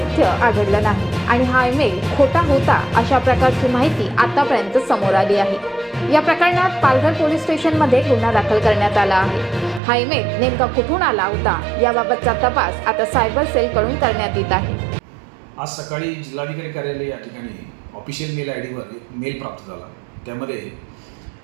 आढळलं नाही आणि हा ईमेल खोटा होता अशा प्रकारची माहिती आतापर्यंत समोर आली आहे। या प्रकरणात पालघर पोलीस स्टेशनमध्ये गुन्हा दाखल करण्यात आला आहे। हा ईमेल नेमका कुठून आला होता याबाबतचा तपास आता सायबर सेलकडून करण्यात येत आहे। आज सकाळी जिल्हाधिकारी कार्यालय या ठिकाणी ऑफिशियल मेल आयडीवर एक मेल प्राप्त झाला। त्यामध्ये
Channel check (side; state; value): left; drops out; at 9.8 s